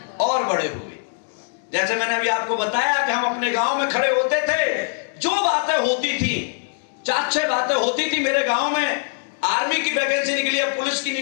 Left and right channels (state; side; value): silent; right; digital silence